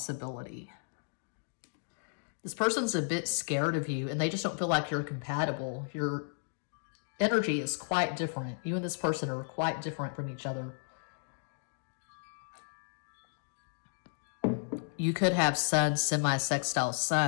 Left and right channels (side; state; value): right; silent; digital silence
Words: This person's a bit scared of you, and they just don't feel like you're compatible. Your energy is quite different. You and this person are quite different from each other. You could have Sun semi-sextile